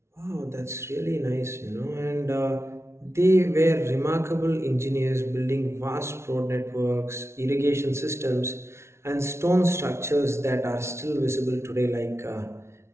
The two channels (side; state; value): left; late; 0.13 ms